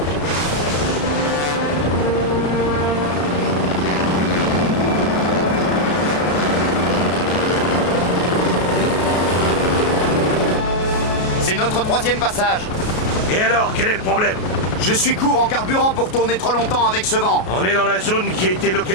C'est notre 3e passage. Et alors, quel est le problème? Je suis court en carburant pour tourner trop longtemps avec ce vent. On est dans la zone qui a été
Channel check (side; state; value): right; late; 33 ms